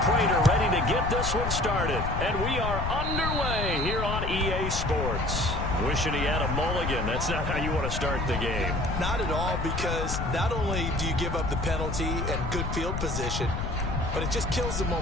Prater ready to get this one started. And we are underway here on EA Sports. Wishing he had a mulligan. That's not how you want to start the game. Not at all, because not only do you give up the penalty and good field position, but it just kills the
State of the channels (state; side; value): noise; left; rumble, 2 dB below the sound